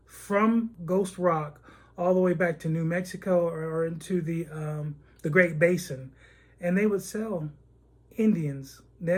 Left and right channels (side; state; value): both; identical; correlation 1.00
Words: from Ghost Rock all the way back to New Mexico or into the Great Basin. And they would sell Indians,